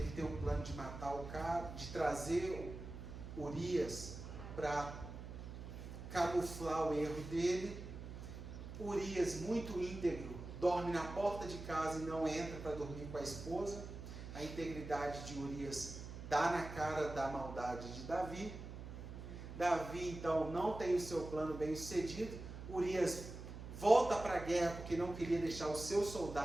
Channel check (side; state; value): right; noise; hum, 10 dB below the sound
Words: tem um plano de matar o cara, de trazer Urias para camuflar o erro dele. Urias, muito íntegro, dorme na porta de casa e não entra para dormir com a esposa. A integridade de Urias dá na cara da maldade de Davi. Davi então não tem o seu plano bem sucedido. Urias volta para a guerra porque não queria deixar os seus